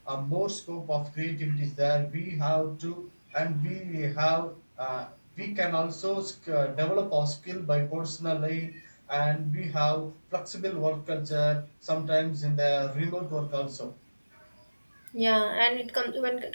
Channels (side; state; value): both; inverted; correlation -1.00